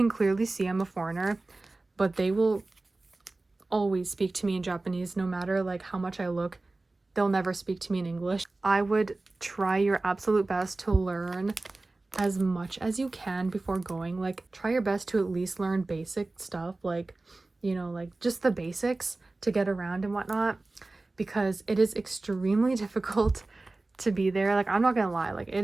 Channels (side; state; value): left; quieter; 3.2 dB